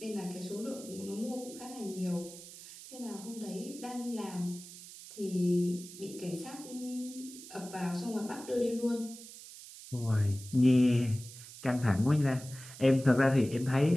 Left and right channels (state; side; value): noise; right; hiss, 15 dB below the sound